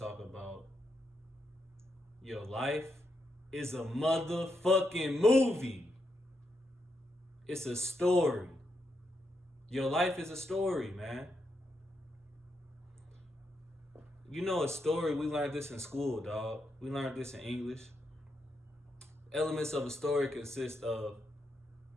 about your life is a motherfucking movie. It's a story. Your life is a story, man. You know a story, we learned this in school, dog. We learned this in English. Elements of a story consist of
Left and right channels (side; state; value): both; normal; correlation 0.82